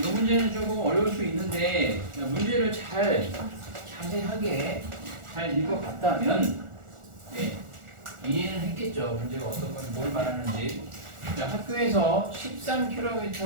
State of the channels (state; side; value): late; left; 1.4 ms